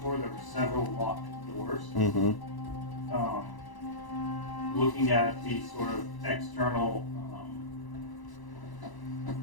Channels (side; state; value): right; late; 1.0 ms